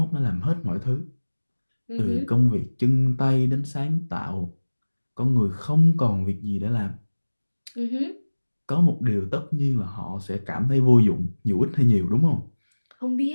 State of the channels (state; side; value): inverted; both; correlation -1.00